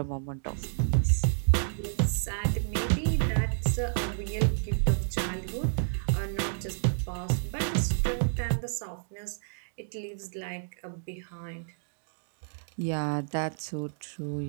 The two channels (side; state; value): left; silent; digital silence